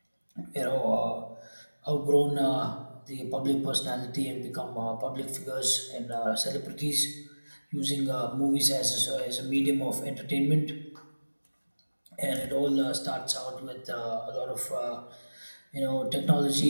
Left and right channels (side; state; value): both; inverted; correlation -1.00